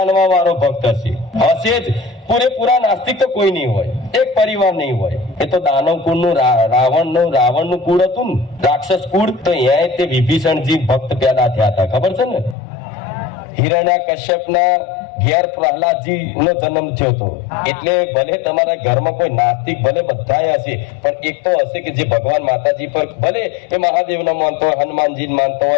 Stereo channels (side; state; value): right; drops out; at 12.6 s